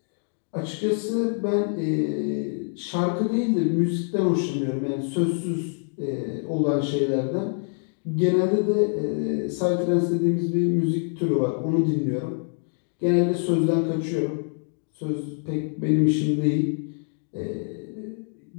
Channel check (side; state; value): right; silent; 57 dB below the other